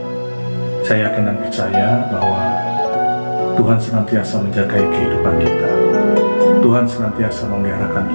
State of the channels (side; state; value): both; inverted; correlation -1.00